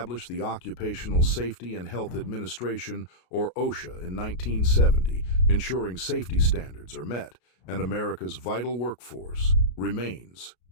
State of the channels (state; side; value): late; right; 33 ms